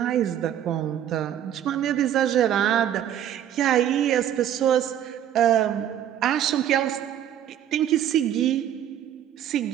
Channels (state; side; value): quieter; left; 10.6 dB